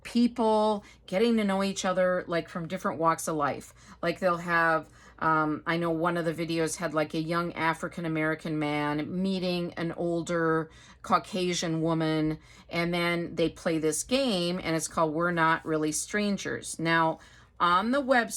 people getting to know each other like from different walks of life. Like they'll have, I know one of the videos had like a young African-American man meeting an older Caucasian woman. And then they play this game, and it's called We're Not Really Strangers. Now, on the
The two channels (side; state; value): both; identical; correlation 1.00